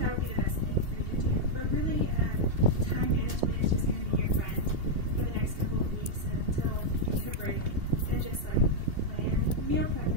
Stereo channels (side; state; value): left; late; 2.8 ms